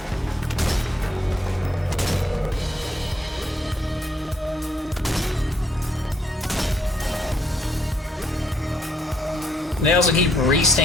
They also keep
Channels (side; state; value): both; normal; correlation 0.72